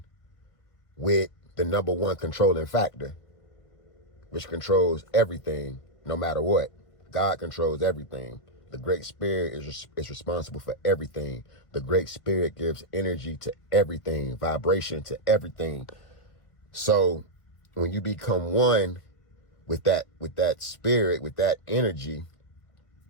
with the number one controlling factor, which controls everything no matter what. God controls everything. The Great Spirit is responsible for everything. The Great Spirit gives energy to everything, vibration to everything. So when you become one with that spirit, with that energy,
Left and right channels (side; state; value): right; late; 1.5 ms